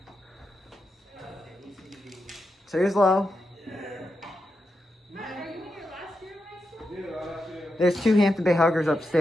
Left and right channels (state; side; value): normal; both; correlation 0.87